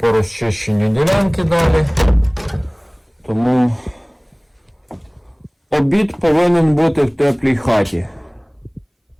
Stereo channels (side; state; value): both; identical; correlation 1.00